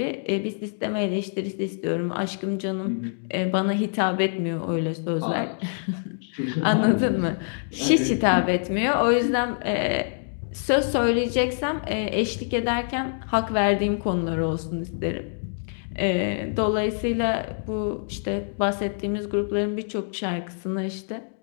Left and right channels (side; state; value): right; silent; digital silence